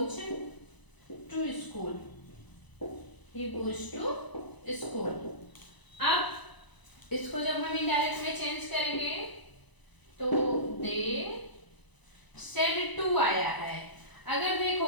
to school, he goes to school। अब इसको जब हम इनडायरेक्ट में चेंज करेंगे तो दे सेड टू आया है। अगर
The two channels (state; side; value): late; right; 1.0 ms